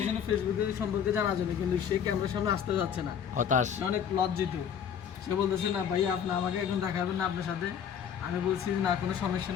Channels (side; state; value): right; quieter; 8.1 dB